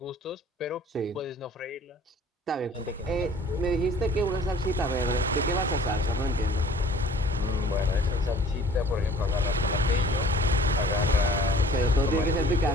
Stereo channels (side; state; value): both; normal; correlation 0.50